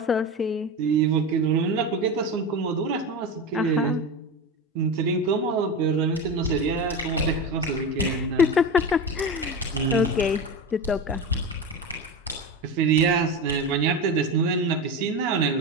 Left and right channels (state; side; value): normal; both; correlation 0.23